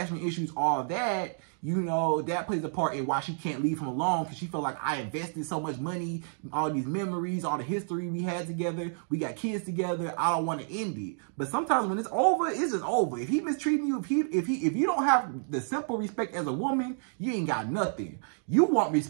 issues, all that. You know, that plays a part in why she can't leave him alone because she felt like I invested so much money, all these memories, all the history we had together. We got kids together. I don't want to end it. But sometimes when it's over, it's just over. If he mistreating you, if you don't have the simple respect as a woman, you ain't got nothing. You want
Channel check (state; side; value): silent; left; digital silence